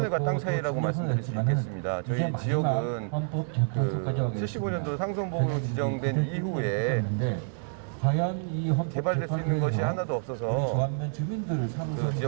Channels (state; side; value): silent; left; 59 dB below the other